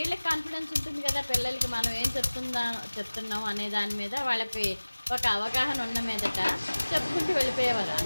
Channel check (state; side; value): inverted; both; correlation -1.00